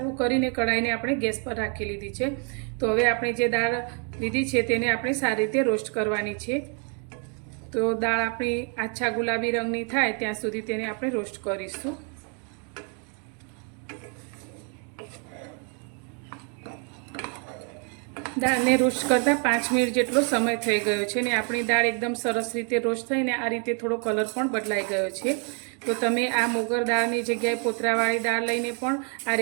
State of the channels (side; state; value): left; quieter; 39.2 dB